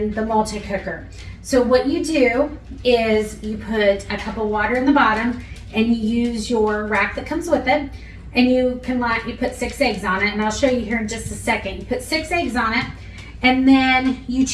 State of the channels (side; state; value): both; identical; correlation 1.00